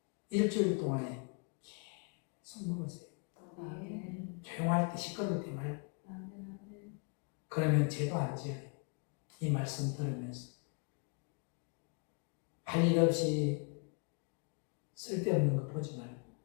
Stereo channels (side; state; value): right; quieter; 37.7 dB